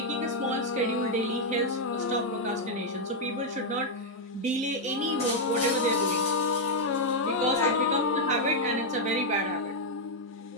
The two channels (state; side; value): normal; both; correlation -0.01